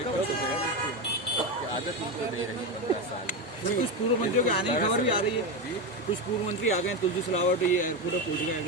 आदत उनको नहीं रही 15 साल। कुछ पूर्व मंत्रियों के आने की खबर भी आ रही है। कुछ पूर्व मंत्री आ गए, तुलसी सिलावट ये पूरा पूछ गए।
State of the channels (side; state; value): both; normal; correlation 0.14